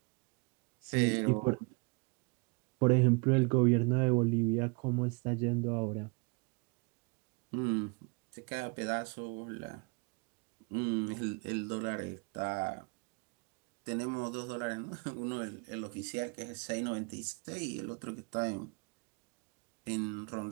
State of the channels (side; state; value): left; quieter; 31.6 dB